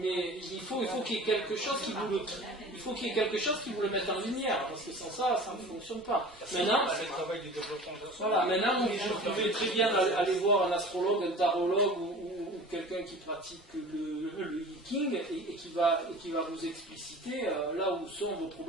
il faut qu'il y ait quelque chose qui vous le mette en lumière, parce que sans ça, ça ne fonctionne pas. Maintenant, vous pouvez très bien aller voir un astrologue, un tarologue ou quelqu'un qui pratique le Viking et qui va vous expliciter là où sont vos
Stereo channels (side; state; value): both; normal; correlation 0.40